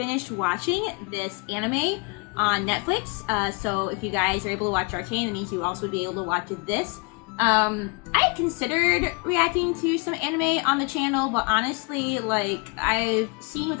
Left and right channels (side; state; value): right; quieter; 30.9 dB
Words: watching this anime on Netflix, so if you guys are able to watch Arcane, that means you also would be able to watch this. I had considered reacting to some anime on the channel, but honestly, like, I've seen with